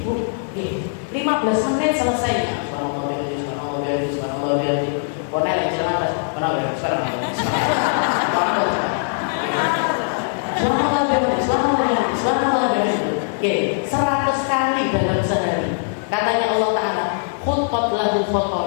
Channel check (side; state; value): right; silent; 65 dB below the other